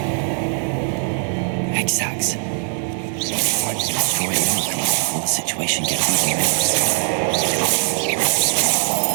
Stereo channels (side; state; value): left; silent; 59 dB below the other